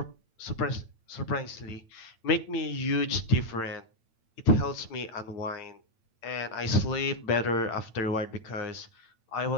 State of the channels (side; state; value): right; late; 8.9 ms